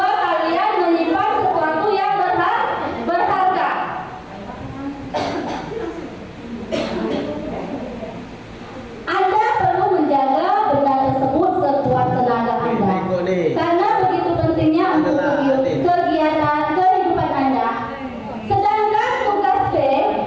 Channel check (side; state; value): both; identical; correlation 1.00